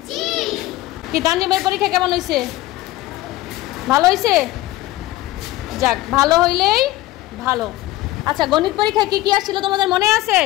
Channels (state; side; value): quieter; right; 17.0 dB